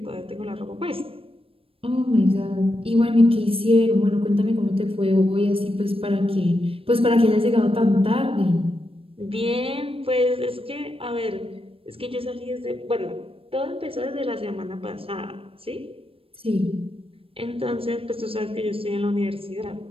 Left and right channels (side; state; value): left; late; 0.27 ms